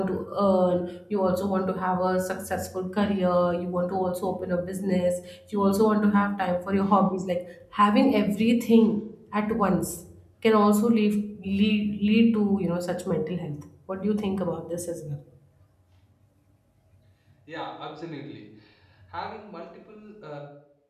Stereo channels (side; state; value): both; identical; correlation 1.00